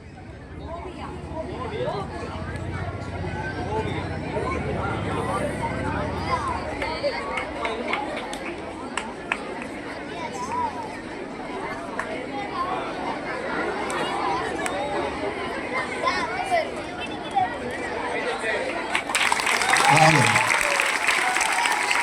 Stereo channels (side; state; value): both; identical; correlation 1.00